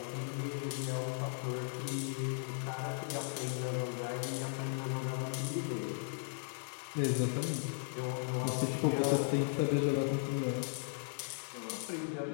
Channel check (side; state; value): right; silent; 53 dB below the other